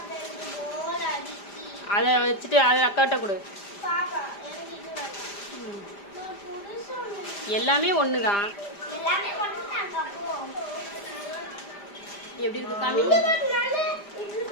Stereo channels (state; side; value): late; right; 5.0 ms